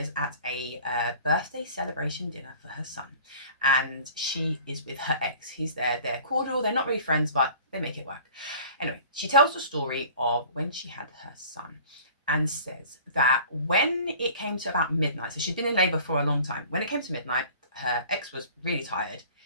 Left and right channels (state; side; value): inverted; both; correlation -0.46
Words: at a birthday celebration dinner for her son, and she is with her ex. He's there, they're cordial, they're not really friends, but they make it work. Anyway, she tells the story of when she had her son and says that when it came to about midnight, so she'd been in labour for a long time, when it came to midnight, her ex was really tired